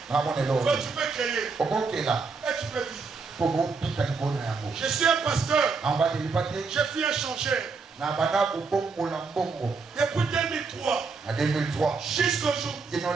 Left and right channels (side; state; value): left; quieter; 4.6 dB